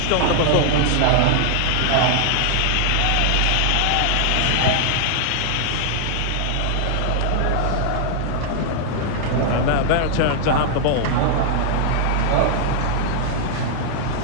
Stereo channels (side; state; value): both; different; correlation -0.01